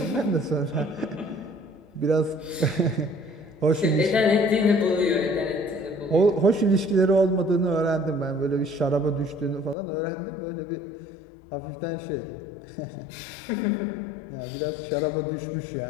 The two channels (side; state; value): right; drops out; at 9.8 s